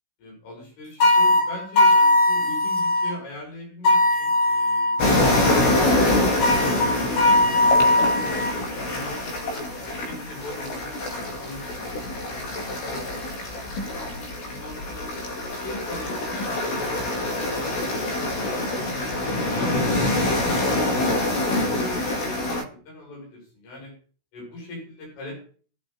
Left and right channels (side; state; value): right; late; 16 ms